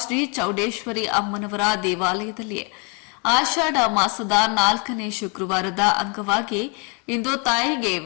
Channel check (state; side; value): quieter; right; 33.7 dB